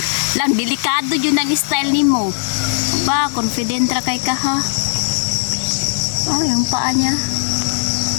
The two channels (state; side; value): silent; right; digital silence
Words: Lang, delikado yun ang style ni mo. Ba, confident ra kay ka ha? Oh, yung paa niya.